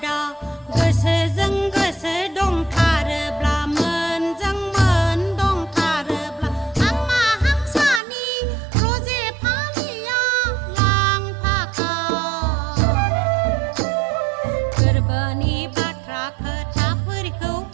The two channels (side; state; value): left; drops out; at 8.0 s